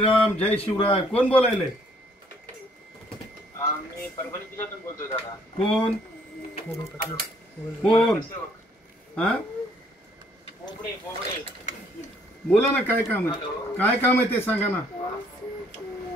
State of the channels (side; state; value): both; normal; correlation 0.64